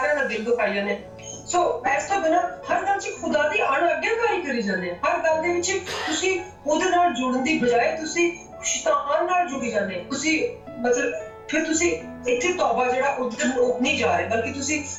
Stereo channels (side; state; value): both; identical; correlation 1.00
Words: ਦਾ ਦਿਲ ਦੁਖਾਈ ਜਾਂਦੇ। ਸੋ ਇਸ ਤੋਂ ਬਿਨਾਂ ਹਰ ਗੱਲ 'ਚ ਖੁਦਾ ਦੀ ਅਣਆਗਿਆਕਾਰੀ ਕਰੀ ਜਾਂਦੇ ਆ। ਹਰ ਗੱਲ ਦੇ ਵਿੱਚ ਤੁਸੀਂ ਉਹਦੇ ਨਾਲ ਜੁੜਨ ਦੀ ਬਜਾਏ ਤੁਸੀਂ ਸ਼ੈਤਾਨ ਨਾਲ ਜੁੜੀ ਜਾਂਦੇ। ਤੁਸੀਂ ਮਤਲਬ ਫਿਰ ਤੁਸੀਂ ਇੱਥੇ ਤੌਬਾ ਜਿਹੜਾ ਉਧਰ ਨਹੀਂ ਜਾ ਰਹੇ, ਬਲਕਿ ਤੁਸੀਂ